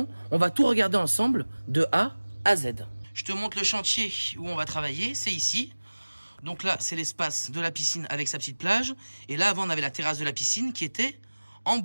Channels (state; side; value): inverted; both; correlation -1.00